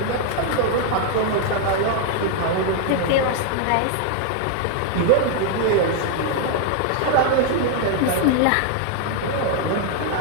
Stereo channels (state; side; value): different; both; correlation 0.00